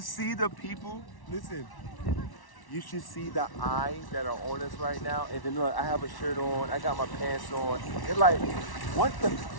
see the people. Listen. You should see the eyes that are on us right now. And then look, I have a shirt on. I got my pants on. They're like, what the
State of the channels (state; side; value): late; right; 1.1 ms